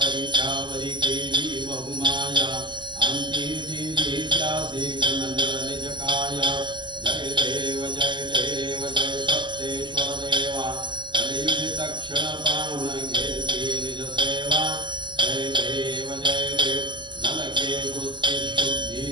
परिचावरिकेली बहुमाया अन्तिदिदित्यासि गणनजकाय जय देव जय देव जय सप्तेश्वर देवा कलियुगतक्षण पावन घेसी निज सेवा जय देव नलके बुद्धि शुद्धि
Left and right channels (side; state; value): left; late; 0.22 ms